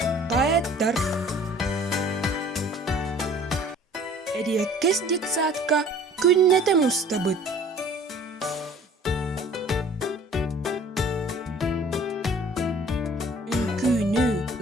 поэттар. Эриэккес детсадка күннете мустабыт. Үңкүүнү,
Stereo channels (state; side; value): normal; both; correlation 0.50